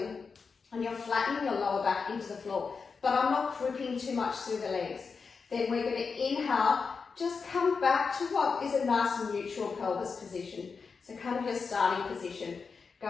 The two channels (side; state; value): right; quieter; 5.1 dB